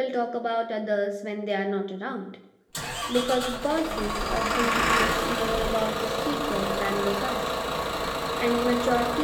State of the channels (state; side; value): identical; both; correlation 1.00